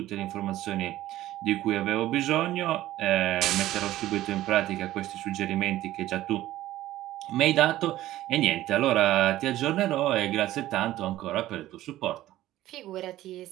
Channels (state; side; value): quieter; left; 14.9 dB